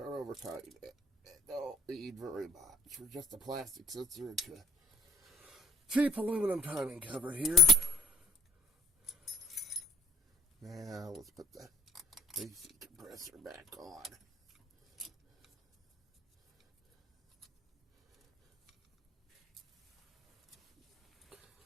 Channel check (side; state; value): both; normal; correlation 0.56